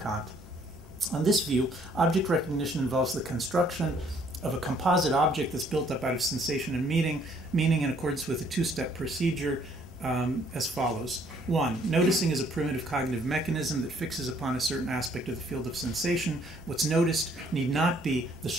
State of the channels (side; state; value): both; normal; correlation 0.63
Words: On this view, object recognition involves the construction of a composite object that's built up out of sensation and meaning in accordance with a 2-step procedure as follows. 1. Noticing is a primitive cognitive mechanism that fixes upon a certain aspect of the field of sensation. What's noticed need not be the